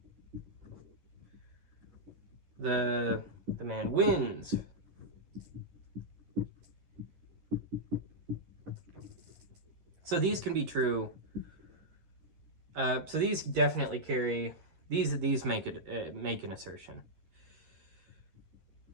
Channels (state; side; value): late; left; 11 ms